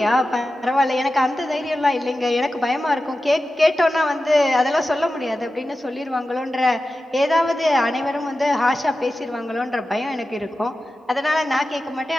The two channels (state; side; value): normal; both; correlation 0.93